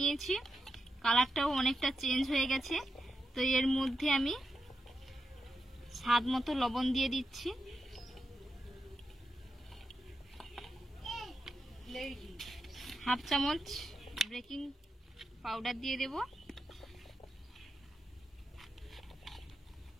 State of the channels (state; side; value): normal; both; correlation 0.86